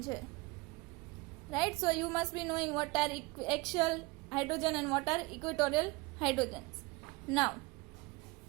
છે. Right, so you must be knowing what are axial hydrogen and what are equatorial hydrogens. Now,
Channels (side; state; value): left; quieter; 24.1 dB